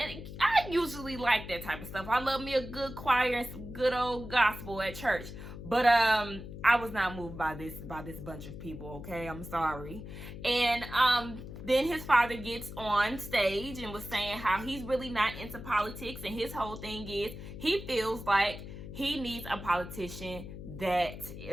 I usually like that type of stuff. I love me a good choir and some good old gospel at church. But I was not moved by this bunch of people, okay? I'm sorry. And then his father gets on stage and was saying how he's really not into politics, and his whole thing is he feels like he needs a politician that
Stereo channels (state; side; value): noise; left; hum, 11 dB below the sound